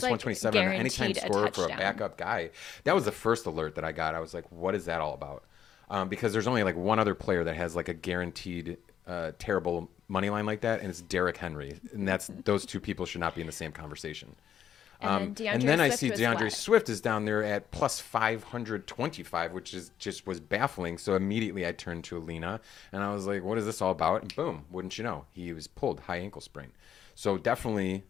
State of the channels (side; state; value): right; quieter; 9.3 dB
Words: like 127 on an anytime guaranteed a scorer for a touchdown. backup guy. That was the first alert that I got. I was like, what is that all about? Because there's only like one other player that has like a guaranteed terrible money line like that, and it's Derrick Henry, and that's those two people should not be in the same conversation. And And then I Swift see was DeAndre what? Swift is down there at plus 525, which is just was baffling. So immediately I turned to Alina, and I was like, what is this all about? And boom, wouldn't you know, he was pulled high ankle sprain. So definitely